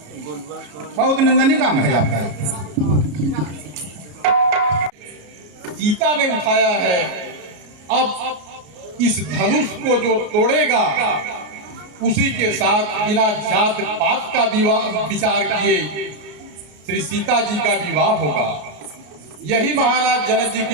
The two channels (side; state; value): left; late; 33 ms